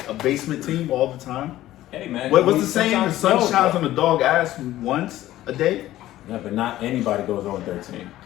a basement team all the time. Hey man, What's the saying? The sun shines on the dog ass once a day. Yeah, but not anybody goes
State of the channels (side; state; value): right; quieter; 14.6 dB